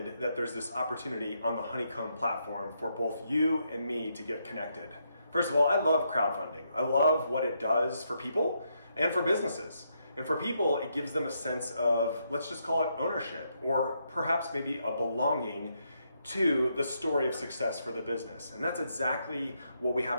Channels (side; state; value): both; inverted; correlation -0.78